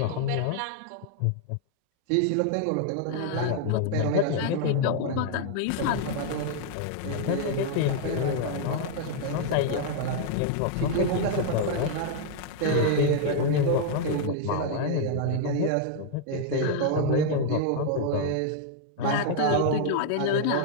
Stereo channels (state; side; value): different; both; correlation 0.00